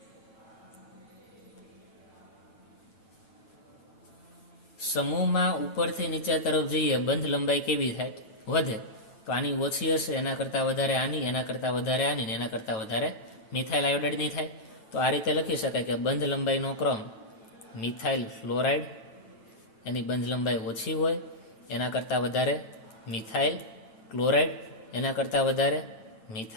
સમૂહમાં ઉપરથી નીચે તરફ જઈએ બંધ લંબાઈ કેવી થાય? વધે. તો આની ઓછી હશે, એના કરતાં વધારે આની, એના કરતાં વધારે આની, એના કરતાં વધારે મિથાઇલ આયોડાઇડની થાય. તો આ રીતે લખી શકાય કે બંધ લંબાઈનો ક્રમ મિથાઇલ ફ્લોરાઇડ એની બંધ લંબાઈ ઓછી હોય, એના કરતાં વધારે મિથાઇલ ક્લોરાઇડ, એના કરતાં વધારે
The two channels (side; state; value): right; late; 9.0 ms